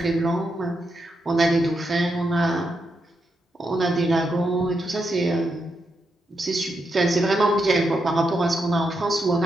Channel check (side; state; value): both; normal; correlation 0.83